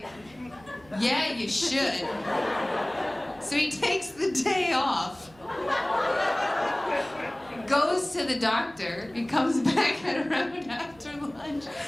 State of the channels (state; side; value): noise; right; hum, 26 dB below the sound